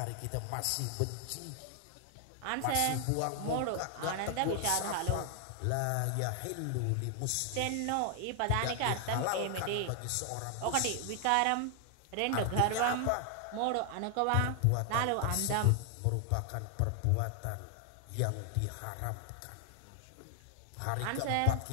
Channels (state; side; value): different; both; correlation 0.00